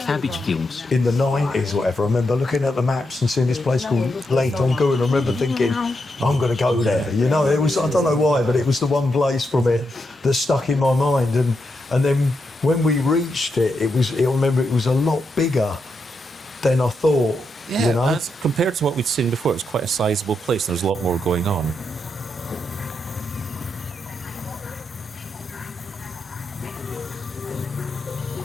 fields. in the 90s, whatever. I remember looking at the maps and seeing this place called Tong Ku, and I remember thinking, I'm going to go there. You know, it was, I don't know why, but it was the one place from it that stuck in my mind. And then when we reached it, I remember it was a lot bigger than I thought. Yeah, you know? that's, compared to what we'd seen before, it was quite a sizable place. There was a lot more going on.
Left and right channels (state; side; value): normal; both; correlation 0.83